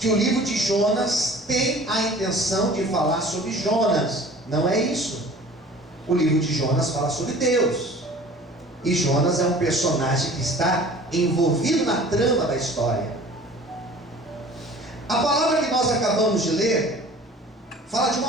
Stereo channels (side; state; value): both; normal; correlation 0.46